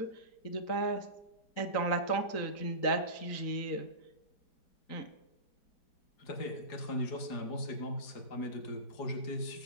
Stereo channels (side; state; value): right; late; 4.8 ms